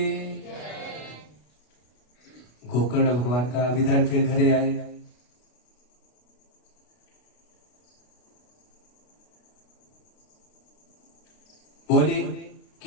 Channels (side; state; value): right; late; 33 ms